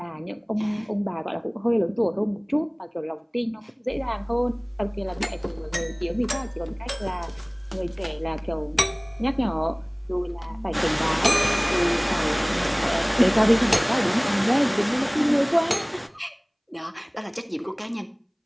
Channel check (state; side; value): identical; both; correlation 1.00